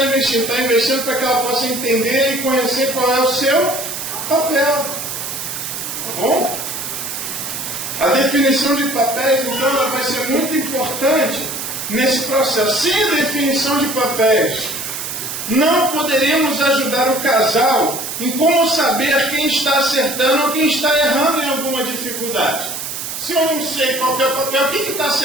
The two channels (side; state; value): right; noise; hiss, 6 dB below the sound